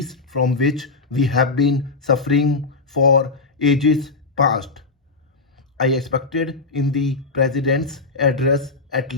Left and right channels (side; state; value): right; quieter; 3.9 dB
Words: from which we have been suffering for ages past. I expected in the President's address at